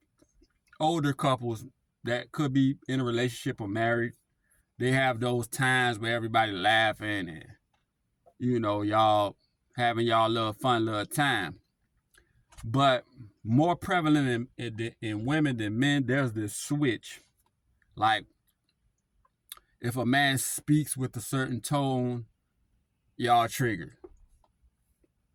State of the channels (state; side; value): identical; both; correlation 1.00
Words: older couples that could be in a relationship or married, they have those times where everybody laughing and, you know, y'all having y'all little fun little time. But more prevalent in women than men, there's this switch. Like, if a man speaks with a certain tone, y'all triggered.